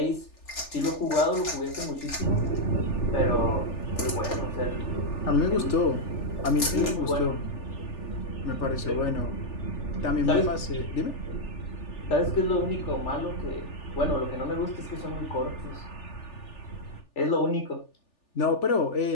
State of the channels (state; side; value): late; right; 3.4 ms